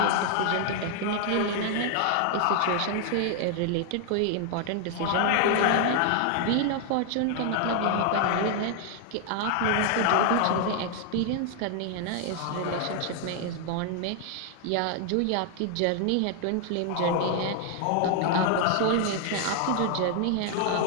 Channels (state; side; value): different; both; correlation 0.00